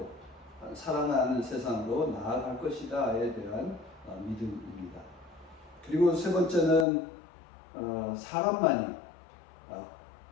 사랑하는 세상으로 나아갈 것이다에 대한 믿음입니다. 그리고 세 번째는 사람만이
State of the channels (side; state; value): right; drops out; at 6.9 s